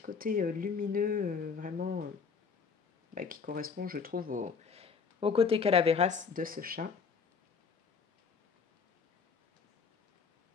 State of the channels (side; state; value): right; quieter; 5.7 dB